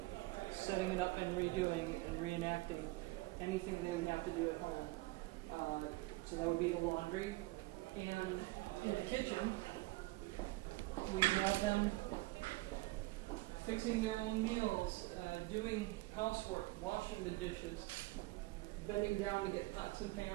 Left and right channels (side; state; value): left; quieter; 21.2 dB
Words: setting it up and redoing and reenacting anything they would have to do at home. So that would be the laundry. And in the kitchen, we have them fixing their own meals, doing housework, washing the dishes, bending down to get pots and